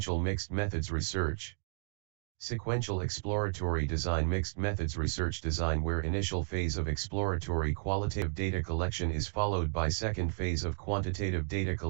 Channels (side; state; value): left; silent; digital silence